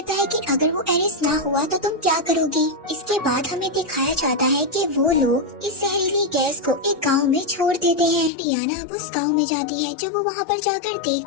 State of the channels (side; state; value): right; drops out; at 8.3 s